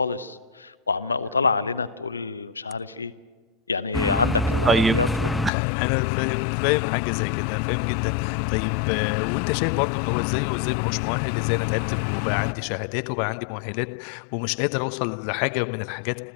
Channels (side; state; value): right; drops out; at 5.5 s